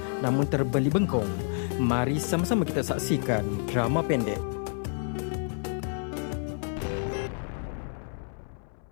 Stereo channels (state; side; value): silent; right; 59 dB below the other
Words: namun terbeli bengkong. Mari sama-sama kita saksikan drama pendek.